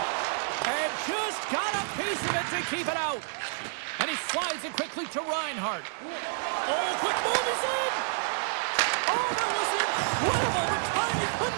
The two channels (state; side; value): silent; left; digital silence